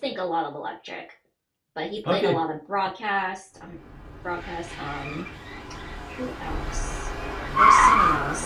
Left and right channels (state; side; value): identical; both; correlation 1.00